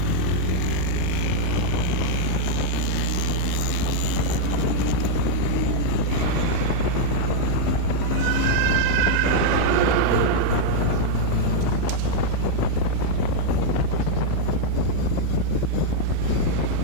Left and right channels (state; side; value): different; both; correlation -0.01